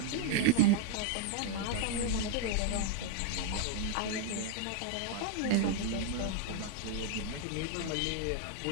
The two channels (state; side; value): different; both; correlation 0.00